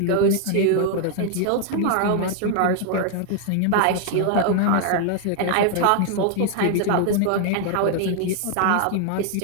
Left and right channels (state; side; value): different; both; correlation 0.00